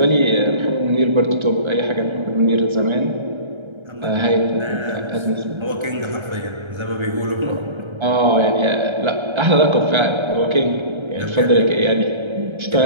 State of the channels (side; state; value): left; late; 1.3 ms